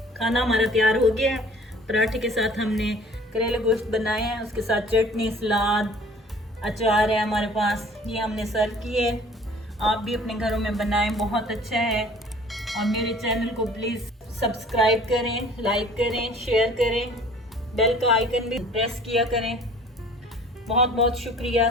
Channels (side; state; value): both; normal; correlation 0.50